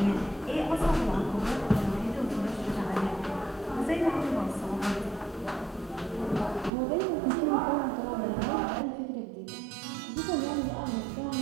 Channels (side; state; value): left; drops out; at 6.7 s